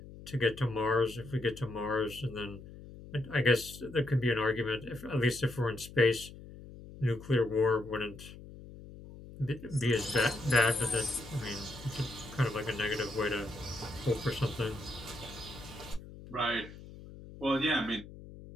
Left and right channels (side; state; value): left; noise; hum, 16 dB below the sound